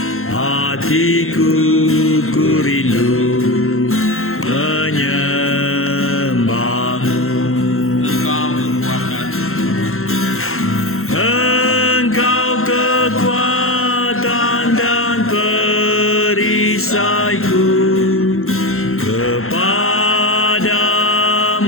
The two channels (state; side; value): late; right; 0.62 ms